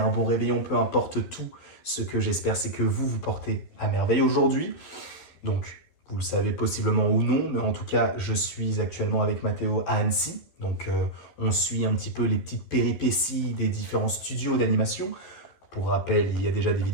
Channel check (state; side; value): late; right; 12 ms